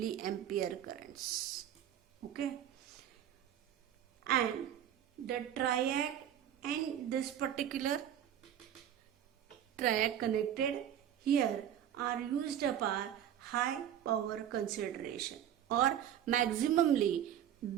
currents. Okay, and the triac and this particular triac connected here are used for high power consideration, or maximally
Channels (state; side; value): quieter; left; 10.3 dB